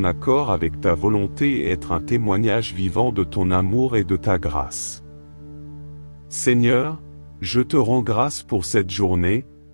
accord avec ta volonté et être un témoignage vivant de ton amour et de ta grâce. Seigneur, je te rends grâce pour cette journée,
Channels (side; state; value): both; inverted; correlation -1.00